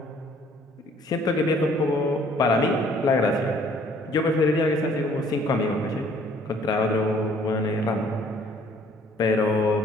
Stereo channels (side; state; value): both; normal; correlation 0.59